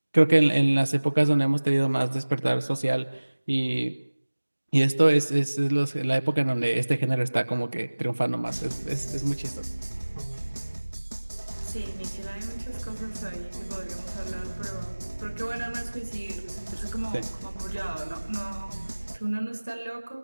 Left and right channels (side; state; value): both; inverted; correlation -1.00